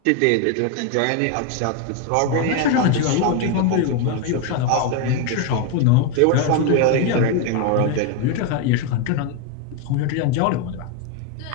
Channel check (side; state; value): both; different; correlation 0.01